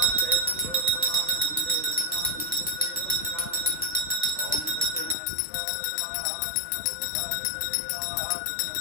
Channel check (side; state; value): right; drops out; at 5.2 s